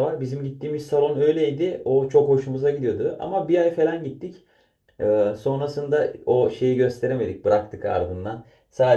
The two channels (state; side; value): identical; both; correlation 1.00